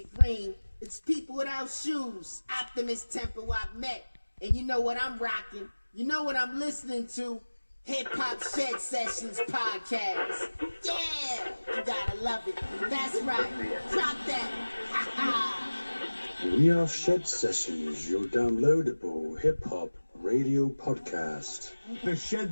green. It's people without shoes, Optimist Temple I've met. And you know what I'm rocking? You know what I'm listening to? Hip Hop Shedsessions podcast. Yeah, you gotta love it. That's right. Drop that. Ha ha. We are Shedsessions, your downloadable hip hop radio podcast. The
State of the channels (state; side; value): inverted; both; correlation -1.00